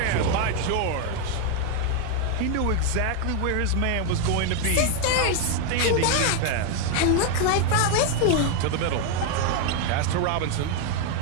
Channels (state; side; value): different; both; correlation 0.01